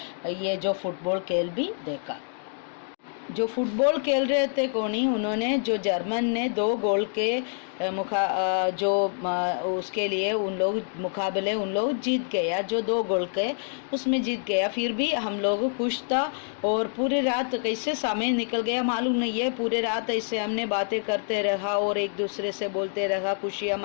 ये जो फुटबॉल खेल भी देखा। जो फुटबॉल खेल रहे थे कोनी, उन्होंने जो जर्मन ने 2 गोल के उसके लिए उन लोग मुकाबले उन लोग जीत गया, जो 2 गोल के उसमें जीत गया। फिर भी हम लोग खुश था और पूरी रात कैसे समय निकल गया मालूम नहीं है। पूरे रात ऐसे हमने बातें करते रहा और एक दूसरे से बोलते रहा, खुशियाँ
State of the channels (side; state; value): right; silent; digital silence